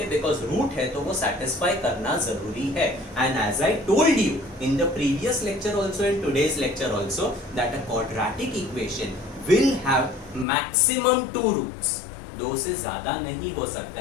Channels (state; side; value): drops out; right; at 10.5 s